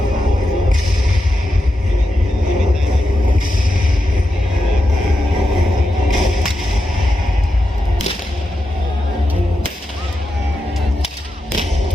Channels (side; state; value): both; normal; correlation 0.88